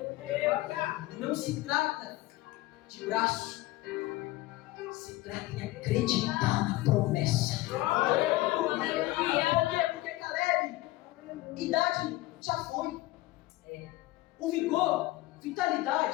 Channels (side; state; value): right; quieter; 18.2 dB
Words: Não se trata de braço. Se trata em acreditar na promessa. Por quê? Porque Caleb, idade já foi. O vigor,